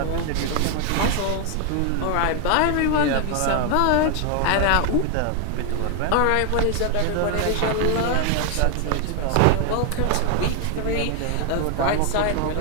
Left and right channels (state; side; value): different; both; correlation 0.00